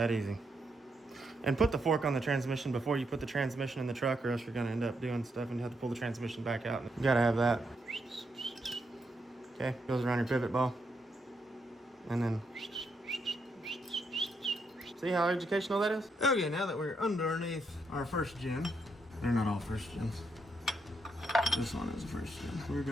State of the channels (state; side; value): normal; both; correlation 0.79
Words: easy. And put the fork on the transmission before you put the transmission in the truck, or else you're gonna end up doing stuff and you have to pull the transmission back out. You gotta have that. Okay, goes around your pivot ball. And then, see how educational that is? Okay, now that we're underneath our first gen, they're not all first gens. This one is a first gen. We're